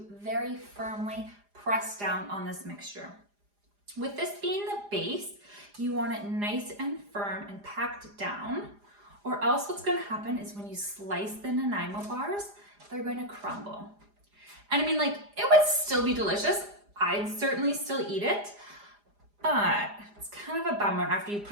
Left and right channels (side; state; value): left; late; 4.9 ms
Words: very firmly press down on this mixture. With this being the base, you want it nice and firm and packed down, or else what's going to happen is when you slice the Nanaimo bars, they're going to crumble. And I mean, like, it would still be delicious. I'd certainly still eat it, but it's kind of a bummer after you